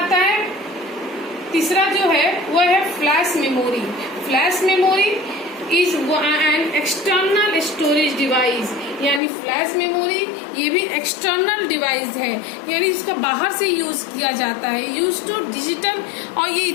है तीसरा जो है वो है flash memory. Flash memory is an external storage device. यानी फ्लैश मेमोरी ये भी एक्सटर्नल डिवाइस है, यानी इसका बाहर से यूज किया जाता है, यूज टू डिजिटल। और ये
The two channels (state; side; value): drops out; right; at 9.2 s